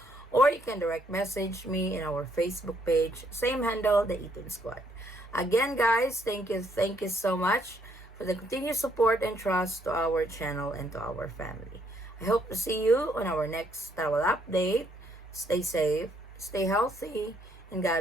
Or you can direct message me in our Facebook page, same handle, the Eaton Squad. Again guys, thank you so much for the continued support and trust to our channel and to our family. I hope to see you on our next travel update. Stay safe, stay healthy, and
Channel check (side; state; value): both; normal; correlation 0.70